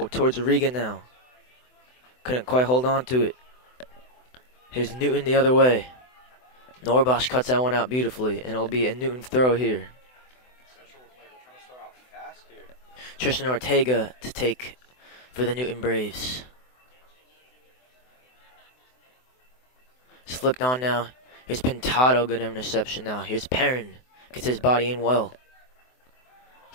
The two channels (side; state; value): right; late; 24 ms